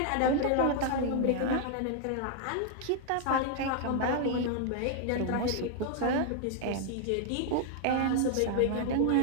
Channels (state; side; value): different; both; correlation 0.00